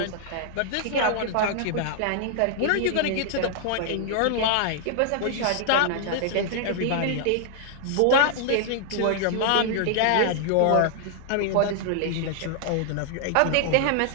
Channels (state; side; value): different; both; correlation -0.01